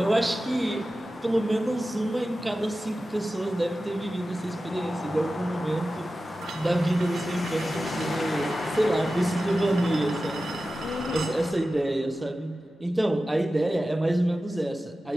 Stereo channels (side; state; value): both; normal; correlation 0.94